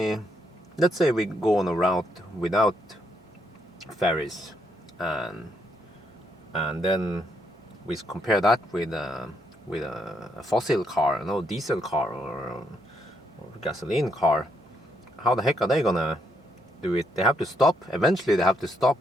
let's say we go on a route without ferries, and then we compare that with a fossil car, no, diesel car or gasoline car, how the heck are they gonna do it? They have to stop. Eventually they have to stop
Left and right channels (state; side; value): normal; both; correlation 0.75